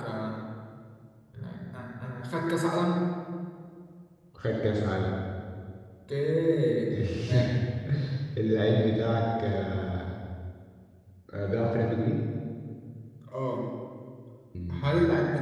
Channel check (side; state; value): both; identical; correlation 1.00